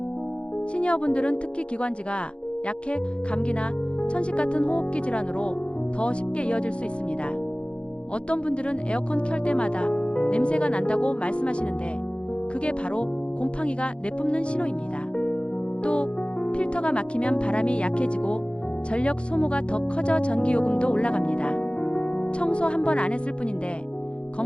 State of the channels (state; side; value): late; right; 0.058 ms